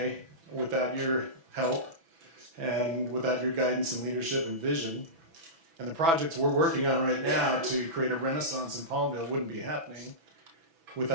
without your help and without your guidance and leadership and vision. And the projects we're working on right now to create a renaissance in Palmdale wouldn't be happening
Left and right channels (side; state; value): left; late; 6.1 ms